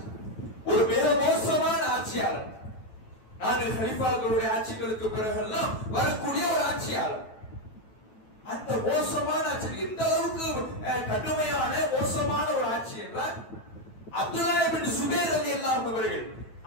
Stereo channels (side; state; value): right; late; 9.3 ms